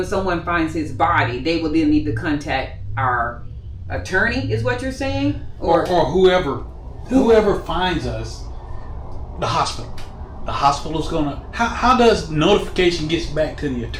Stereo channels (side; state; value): both; identical; correlation 1.00